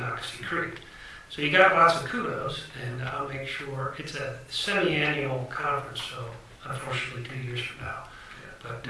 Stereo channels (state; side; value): identical; both; correlation 1.00